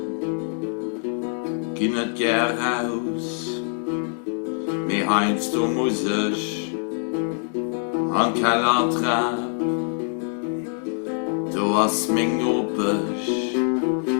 geh nicht gern raus. Mir heinz du muss ich an Keller trab. Du hast mich nopisch,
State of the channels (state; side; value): silent; right; 63 dB below the other